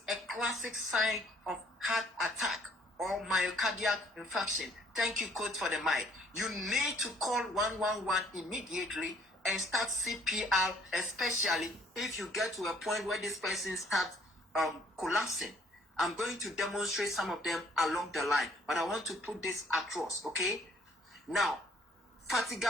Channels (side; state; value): both; normal; correlation 0.61